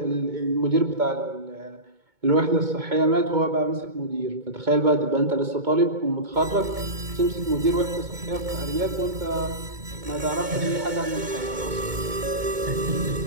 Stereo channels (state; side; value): late; left; 2.2 ms